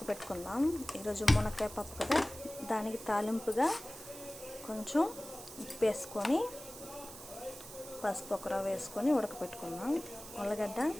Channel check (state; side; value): noise; right; hiss, 14 dB below the sound